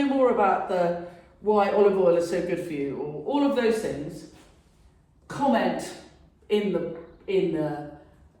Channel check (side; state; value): both; identical; correlation 1.00